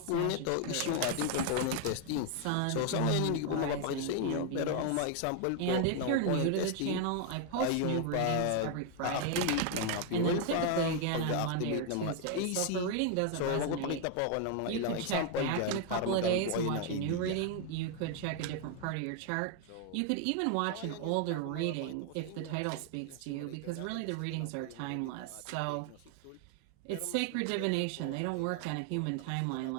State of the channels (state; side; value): different; both; correlation 0.00